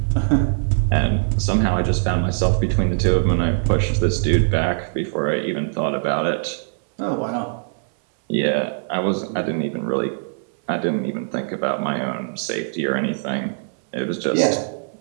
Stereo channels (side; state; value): left; silent; 63 dB below the other